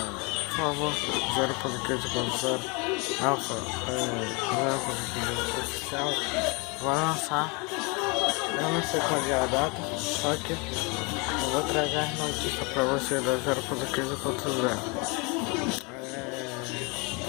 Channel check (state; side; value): quieter; right; 30.2 dB